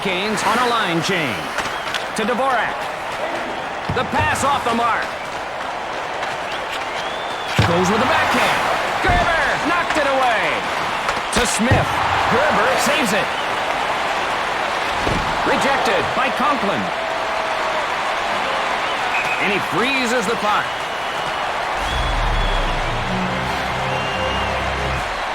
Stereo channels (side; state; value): both; identical; correlation 1.00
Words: on a line change. To Dvorak. The pass off the mark. Goes with the backhand. Gerber knocked it away. To Smith. Gerber saves it. Rejected by Conklin. And he freezes the puck.